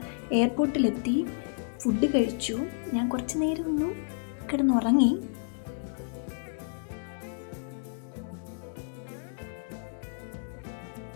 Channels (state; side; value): silent; right; digital silence